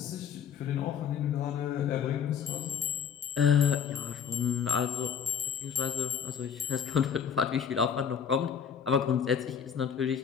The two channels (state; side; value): quieter; right; 7.6 dB